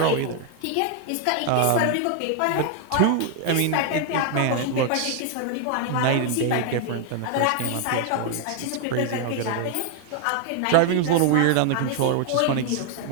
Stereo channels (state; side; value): different; both; correlation 0.00